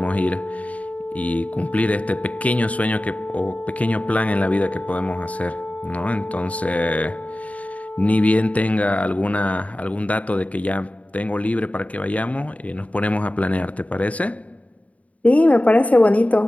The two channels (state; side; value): late; right; 0.068 ms